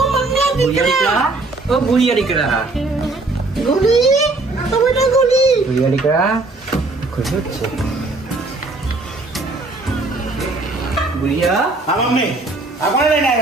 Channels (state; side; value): quieter; left; 3.2 dB